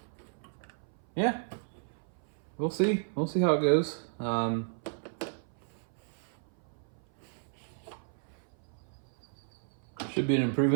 yeah, we'll see how it goes. Should be an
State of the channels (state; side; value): silent; left; 56 dB below the other